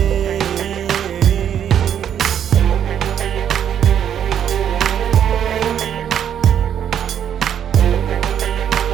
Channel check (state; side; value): quieter; left; 9.2 dB